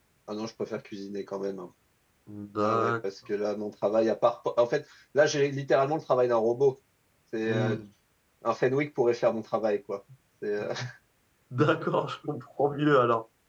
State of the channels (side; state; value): both; identical; correlation 1.00